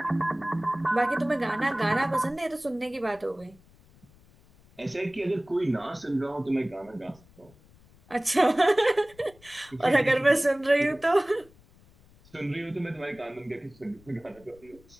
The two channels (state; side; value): noise; left; rumble, 27 dB below the sound